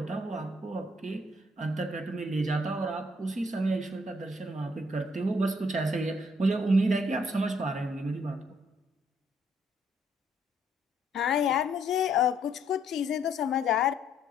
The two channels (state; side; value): normal; both; correlation 0.68